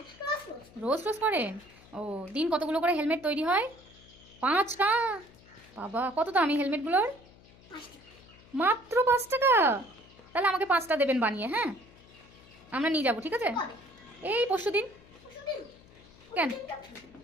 রোজ রোজ রোজ রোজ করেন? ও, দিন কতগুলো করে হেলমেট তৈরি হয়? 5টা? বাবা, কত দামি হেলমেটগুলোর? 5টা। মাত্র 5 টাকা? তাহলে আমাকে 5টা দেবেন বানিয়ে, হ্যাঁ? আমরা নিয়ে যাবো, ঠিক আছে? কবে? এই পরশুদিন। পরশুদিন? কেন? পরশুদিনটা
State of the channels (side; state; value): left; noise; hum, 24 dB below the sound